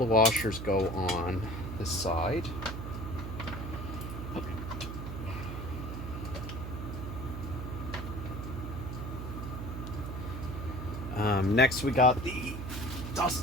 washers go on this side. Next we got the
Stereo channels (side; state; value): right; noise; hum, 6 dB below the sound